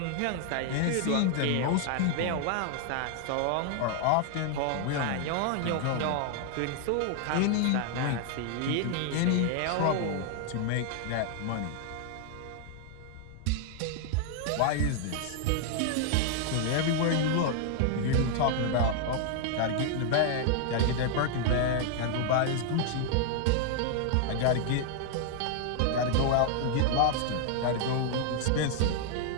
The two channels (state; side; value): different; both; correlation 0.00